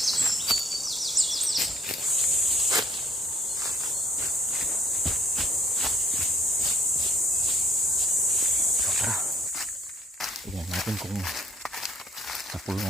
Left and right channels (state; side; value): normal; both; correlation 0.60